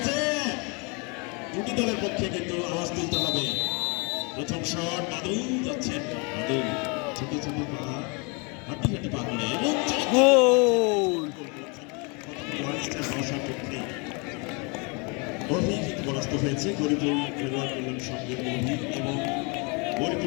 দুটি দলের পক্ষে কিন্তু আওয়াজ তুলতে হবে। প্রথম শট বাদল যাচ্ছেন, বাদল ছোট ছোট পা হাঁটি হাঁটি পা করে এবং গোল। অভিজিৎ পরাস্ত হয়েছে গরিপুর খেলোয়াড় কল্যাণ সঙ্গের অভিজিৎ এবং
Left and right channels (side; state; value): right; quieter; 31.6 dB